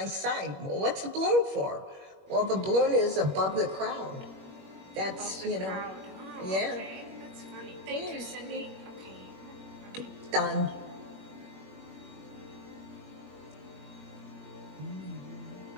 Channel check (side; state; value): left; late; 21 ms